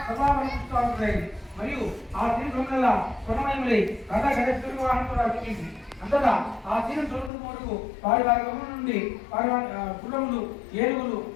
సభావరిస్తూ ఉంటాయి. మరియు ఆ తీరు దొంగల స్వర్ణమయములై రథ గజ వాహనం కూడా వచ్చింది. అంతటా ఆ తీరం చూడటం వరకు వారి వారి గమనం నుండి వారి గుర్రములు, ఏనుగులు,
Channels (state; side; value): drops out; right; at 7.3 s